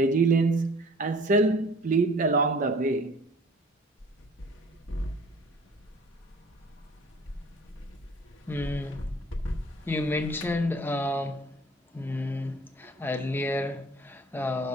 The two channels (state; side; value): normal; both; correlation 0.50